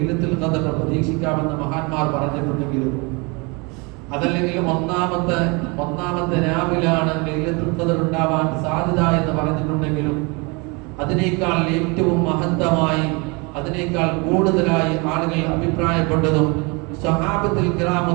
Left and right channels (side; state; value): left; quieter; 29.0 dB